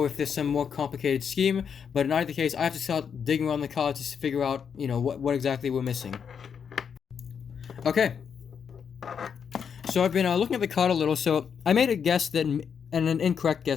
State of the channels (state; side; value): quieter; right; 7.1 dB